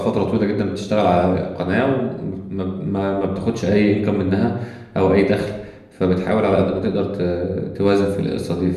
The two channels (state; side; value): identical; both; correlation 1.00